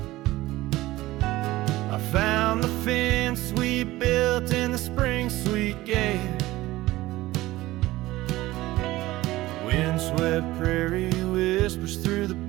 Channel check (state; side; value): quieter; left; 17.6 dB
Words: I found the fence we built in the spring sweet gale. Windswept prairie whispers through the